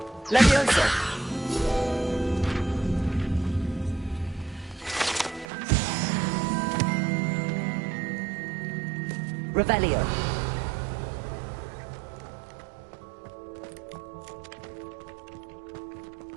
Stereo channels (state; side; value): drops out; left; at 5.5 s